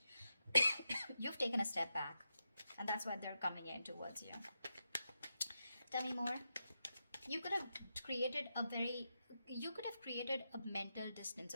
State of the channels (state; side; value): inverted; both; correlation -0.87